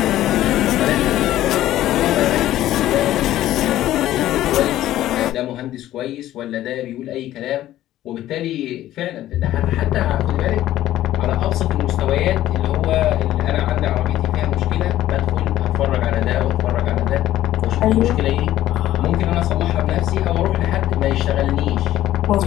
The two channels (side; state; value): right; quieter; 13.8 dB